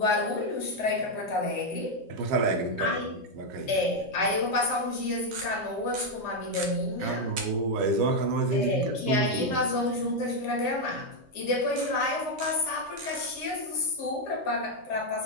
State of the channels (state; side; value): normal; both; correlation 0.02